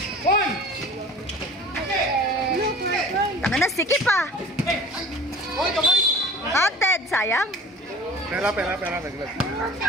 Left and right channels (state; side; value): normal; both; correlation 0.42